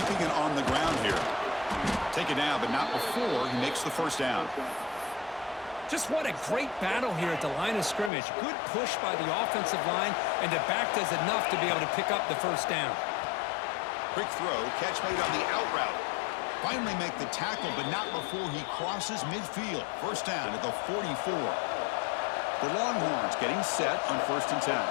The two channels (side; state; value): right; drops out; at 8.1 s